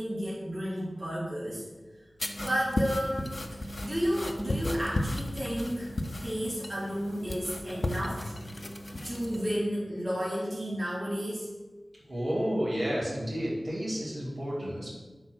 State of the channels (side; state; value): both; normal; correlation 0.97